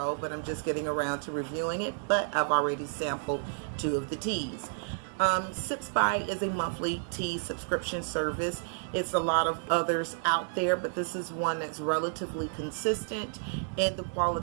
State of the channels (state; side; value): silent; left; digital silence